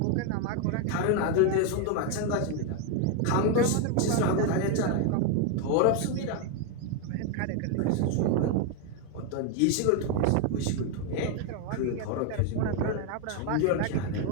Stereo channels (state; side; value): different; both; correlation 0.01